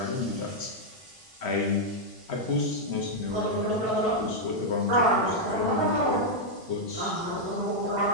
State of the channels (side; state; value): both; normal; correlation -0.02